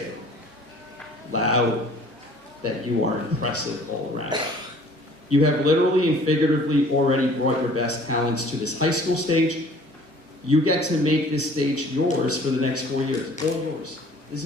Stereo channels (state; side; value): normal; both; correlation 0.52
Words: loud, that you are impressive all around. You have literally and figuratively already brought your best talents to this high school stage. You get to make this stage yours for the next 4 years, all yours. This